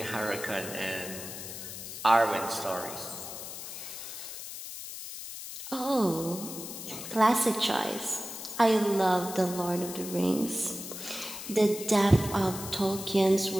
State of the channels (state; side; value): noise; left; hiss, 9 dB below the sound